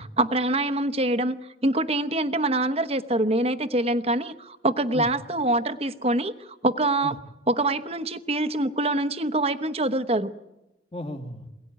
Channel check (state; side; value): normal; both; correlation 0.28